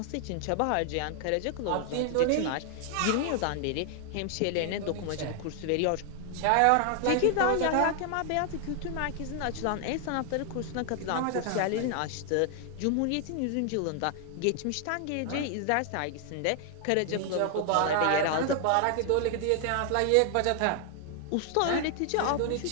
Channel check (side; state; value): both; different; correlation 0.00